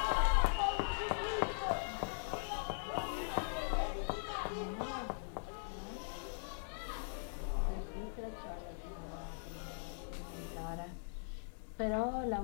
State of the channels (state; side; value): silent; right; 51 dB below the other